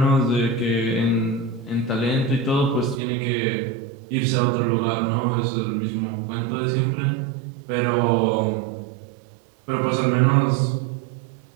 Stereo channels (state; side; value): drops out; left; at 3.0 s